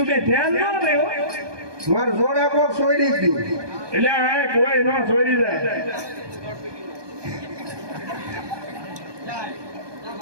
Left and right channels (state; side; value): late; left; 1.2 ms